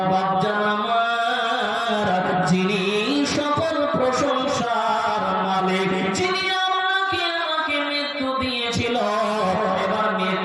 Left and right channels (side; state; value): both; identical; correlation 1.00